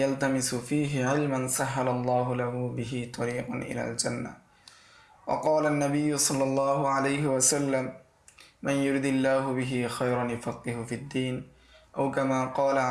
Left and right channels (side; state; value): both; identical; correlation 1.00